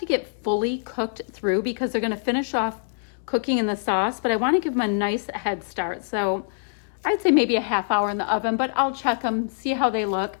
get fully cooked through because they're going to finish off cooking in the sauce, but I want to give them a nice head start. So I'd say maybe a half hour in the oven, but I'll check them, see how they look. I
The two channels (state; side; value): silent; right; digital silence